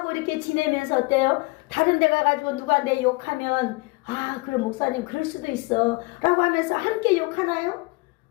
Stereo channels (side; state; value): right; quieter; 25.5 dB